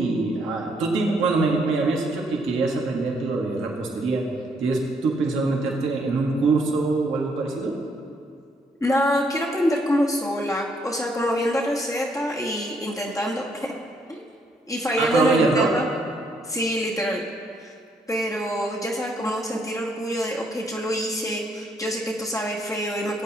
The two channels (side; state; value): both; normal; correlation 0.71